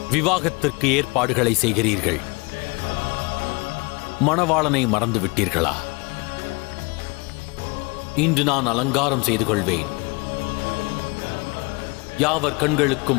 விவாகத்திற்கு ஏற்பாடுகளை செய்கிறீர்கள். மணவாளனை மறந்து விட்டீர்களா? இன்று நான் அலங்காரம் செய்து கொள்வேன். யாவர்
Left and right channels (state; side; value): quieter; right; 28.1 dB